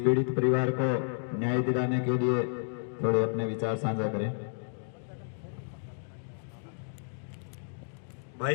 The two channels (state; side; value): silent; right; digital silence